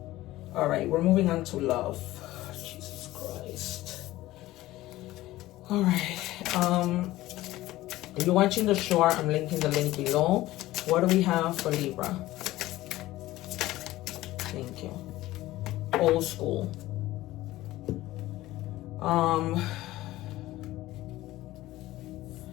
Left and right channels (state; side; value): quieter; right; 16.7 dB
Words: All right, we're moving on to love. Jesus Christ. All right. If you're watching the short, I'm linking the link below. What do we have for Libra? Thank you. Old school.